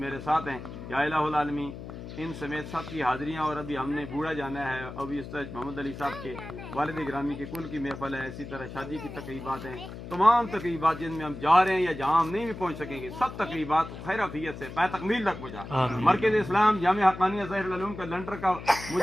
ساتھ ہیں. یا الہ العالمین ان سمیت سب کی حاضریاں، اور ابھی ہم نے بوڑھا جانا ہے، ابھی استاد محمد علی صاحب کے والد گرامی کے کل کی محفل ہے، اسی طرح شادی کی تقریبات ہیں. تمام تقریبات جن میں ہم جا رہے ہیں یا جہاں ہم نہیں بھی پہنچ سکیں گے، سب تقریبات خیر عافیت سے پائے تکمیل تک پہنچا. آمین. مرکز اسلام جامعہ حقانیہ ظاہر العلوم کا لنٹر کا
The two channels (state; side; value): noise; left; hum, 11 dB below the sound